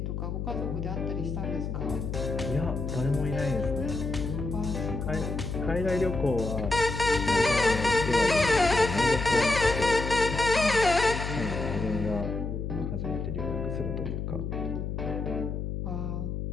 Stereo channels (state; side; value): noise; left; hum, 4 dB below the sound